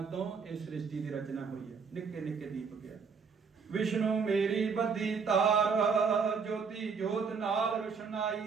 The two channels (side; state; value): left; quieter; 5.7 dB